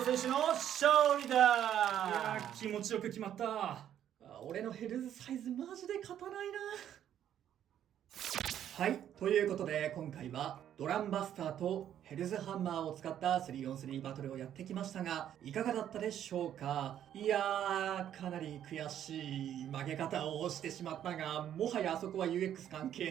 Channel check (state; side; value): quieter; left; 10.4 dB